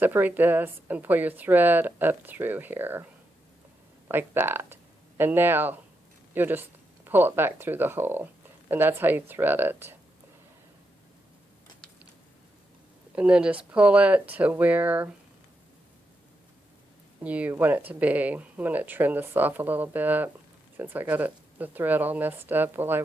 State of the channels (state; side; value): normal; both; correlation 0.84